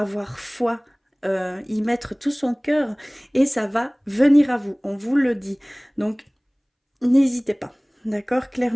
foi, y mettre tout son cœur et ça va venir à vous, on vous le dit. Donc, n'hésitez pas, d'accord?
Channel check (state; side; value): identical; both; correlation 1.00